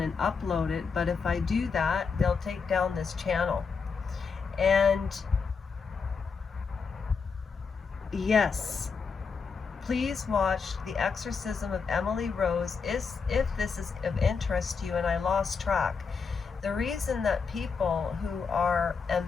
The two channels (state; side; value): quieter; right; 5.4 dB